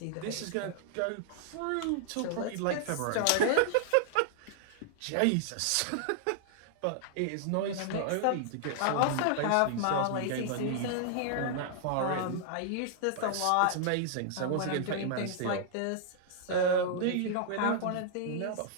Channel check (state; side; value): different; both; correlation -0.01